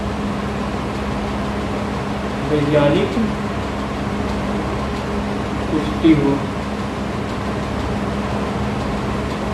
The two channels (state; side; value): identical; both; correlation 1.00